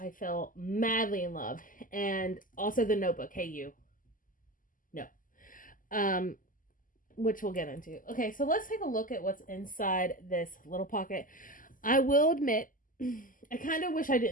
fell madly in love. And also the notebook. Hey, you. No. Which we'll get into. Okay, so let's take a look at what's inside this little pocket. I will admit, I kind of wish I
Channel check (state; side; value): late; right; 0.39 ms